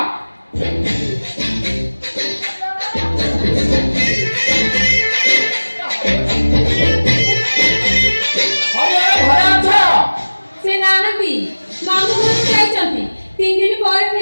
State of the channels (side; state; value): both; inverted; correlation -1.00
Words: ସେ ନାହାନ୍ତି ମାମୁଁ ଘରକୁ ଯାଇଛନ୍ତି 3 ଦିନ ପରେ